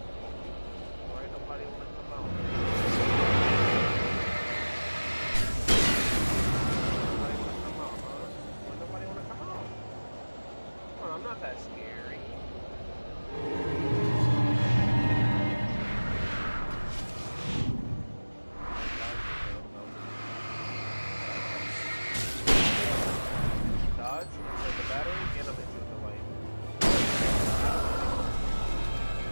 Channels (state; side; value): inverted; both; correlation -1.00